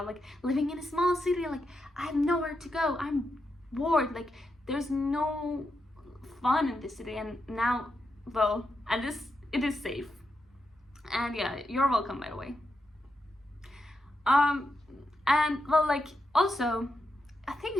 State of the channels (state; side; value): normal; both; correlation 0.85